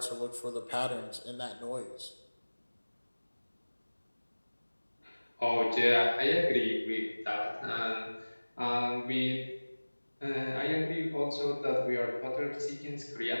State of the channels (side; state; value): both; inverted; correlation -1.00